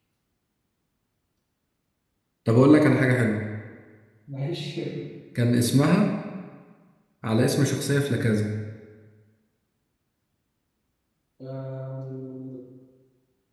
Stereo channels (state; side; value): identical; both; correlation 1.00